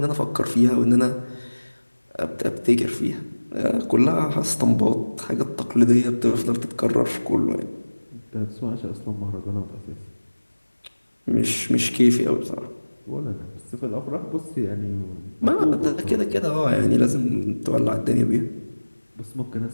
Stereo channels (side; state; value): both; inverted; correlation -1.00